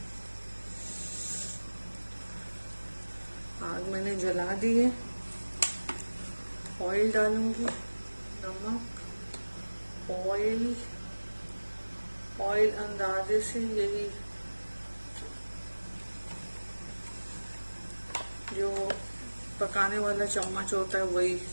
आग मैंने जला दी है। ऑयल डालूंगी। नमक, ऑयल, ऑयल अंदाजे से यही जो पकाने वाला चम्मच होता है वही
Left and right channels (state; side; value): inverted; both; correlation -1.00